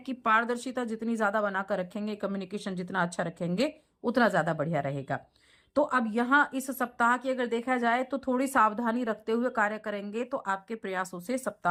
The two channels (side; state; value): both; identical; correlation 1.00